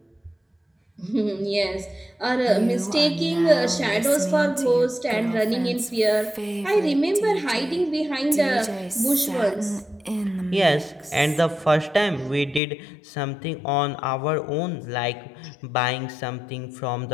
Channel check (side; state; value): right; drops out; at 12.6 s